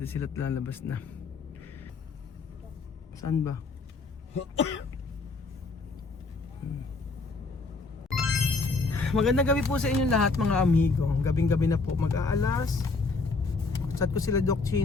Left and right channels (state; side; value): quieter; right; 3.9 dB